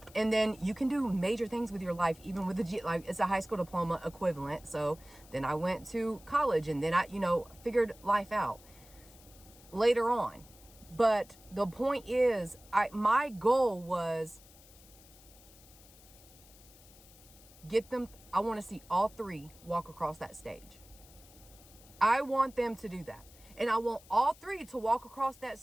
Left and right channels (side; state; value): left; noise; hiss, 23 dB below the sound